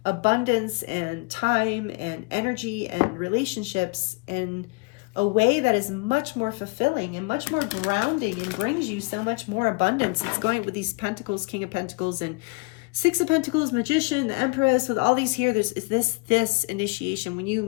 abundance and time and energy and relationships in a way that is much more fulfilling and much more grounding and brings you so much more abundance. It's going with these Pentacles, King of Pentacles and Six of Pentacles, Magician, the Empress, with all these here. There's this initiation when you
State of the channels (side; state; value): right; quieter; 30.0 dB